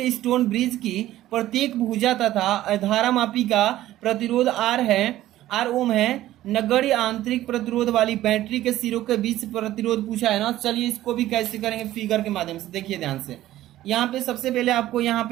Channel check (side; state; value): left; quieter; 14.4 dB